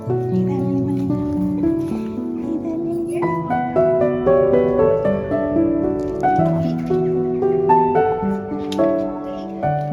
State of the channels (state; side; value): identical; both; correlation 1.00